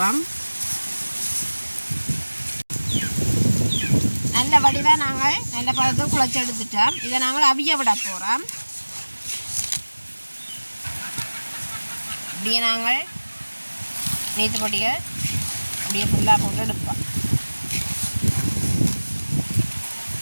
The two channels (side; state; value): both; inverted; correlation -1.00